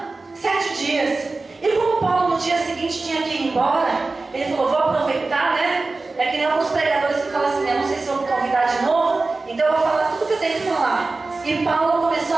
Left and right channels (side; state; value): left; quieter; 3.6 dB